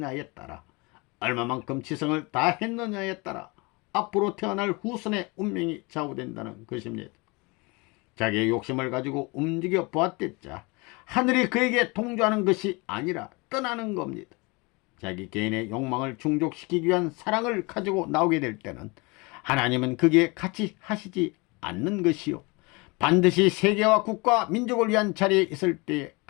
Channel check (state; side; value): quieter; right; 26.9 dB